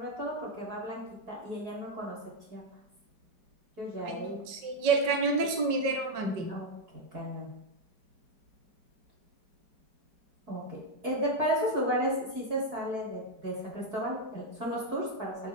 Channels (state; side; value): late; left; 5.3 ms